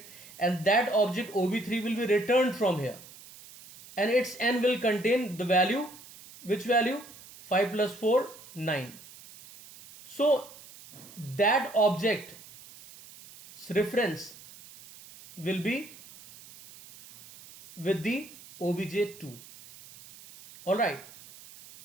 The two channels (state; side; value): noise; right; hiss, 19 dB below the sound